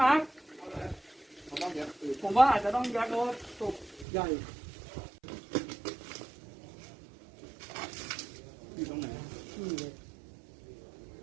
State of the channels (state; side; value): drops out; left; at 4.0 s